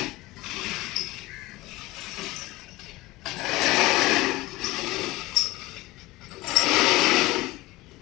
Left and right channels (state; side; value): quieter; right; 19.7 dB